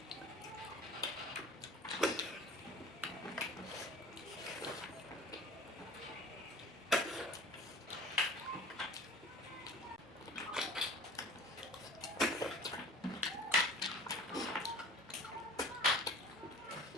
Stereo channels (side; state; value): both; normal; correlation 0.43